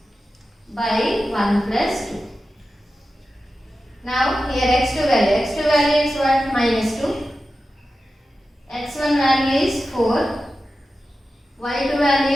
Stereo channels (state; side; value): normal; both; correlation 0.92